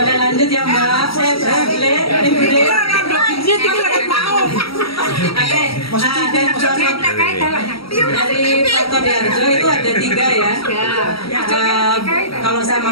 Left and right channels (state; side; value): late; right; 0.75 ms